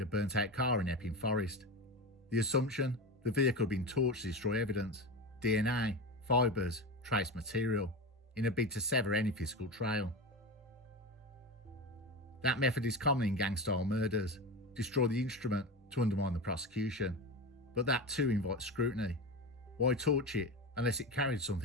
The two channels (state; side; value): normal; both; correlation 0.22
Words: a burnt-out car in Epping Forest. The assumption? The vehicle had been torched to destroy evidence, DNA, fibres, trace material, in a bid to sever any physical trail. That method is common in gang-style murders: destroy the instrument to undermine the prosecution. But that too invites scrutiny. Why torch it unless it carried